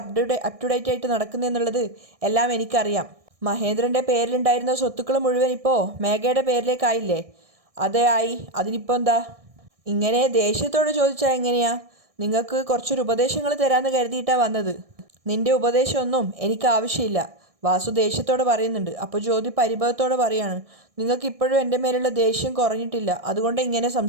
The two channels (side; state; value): left; late; 1.6 ms